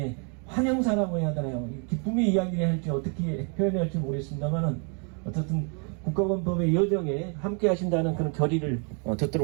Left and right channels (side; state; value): left; quieter; 38.1 dB